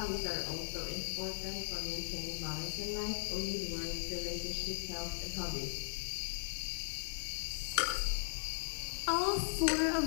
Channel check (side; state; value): right; silent; digital silence